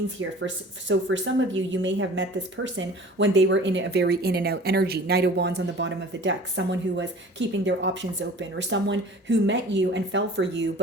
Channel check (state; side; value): normal; both; correlation 0.44